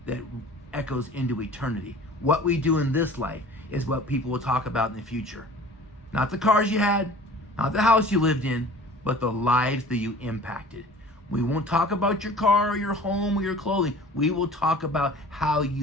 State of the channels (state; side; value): normal; both; correlation 0.45